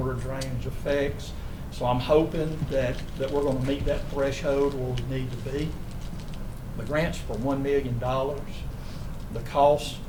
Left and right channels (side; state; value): both; identical; correlation 1.00